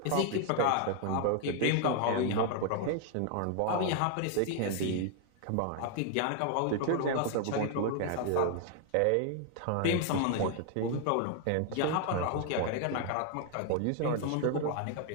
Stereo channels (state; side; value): different; both; correlation 0.00